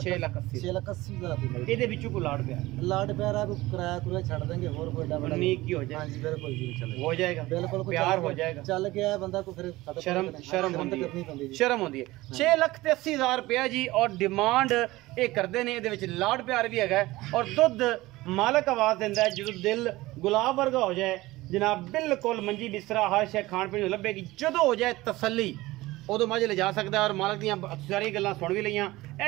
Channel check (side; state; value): left; quieter; 18.9 dB